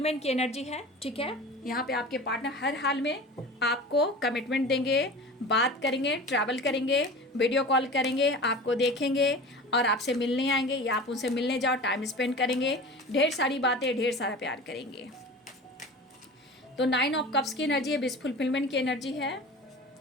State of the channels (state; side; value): normal; both; correlation 0.36